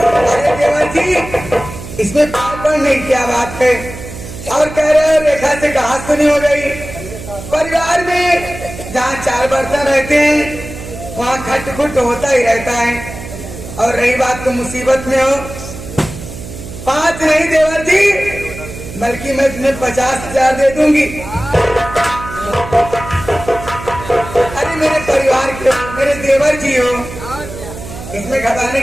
अरे देवर जी, इसमें पागल नहीं, क्या बात है? और कह रहे हो रेखा से कहा सुनी हो गई। परिवार में जहाँ 4 बर्तन रहते हैं वहाँ खटखुट होता ही रहता है। और रही बात तो मुसीबत में हो, 5 नहीं देवर जी, बल्कि मैं तुम्हें 50,000 दे दूंगी। अरे मेरे परिवार के हो, मेरे देवर जी हो, इसमें घबराने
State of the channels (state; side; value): noise; right; hum, 12 dB below the sound